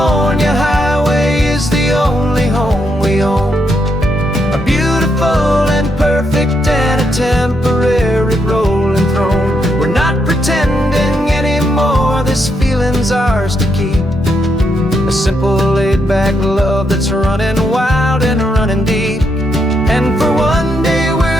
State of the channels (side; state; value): both; normal; correlation 0.79